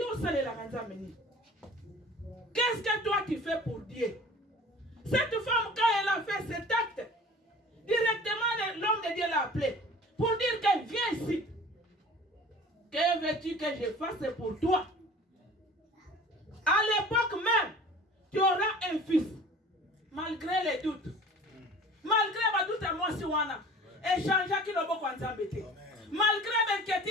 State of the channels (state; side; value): normal; both; correlation 0.44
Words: qu'est-ce que toi tu fais pour Dieu? Cette femme, quand elle a fait cet acte, directement l'homme de Dieu l'a appelé pour dire qu'elle vient ici. Que veux-tu que je fasse pour toi? À l'époque même, tu auras un fils, malgré les doutes. Malgré les doutes à moi, si on a échangé qui le bon embêté. Malgré